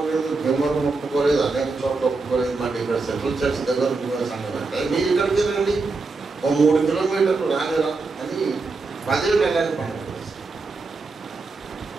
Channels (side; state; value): left; quieter; 3.9 dB